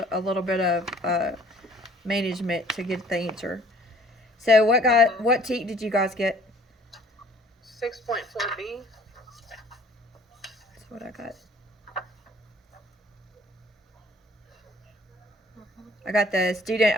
bit of management to get the answer. So what TEK did you guys get? 6.4B. That's what I got. I got the student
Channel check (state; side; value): normal; both; correlation 0.55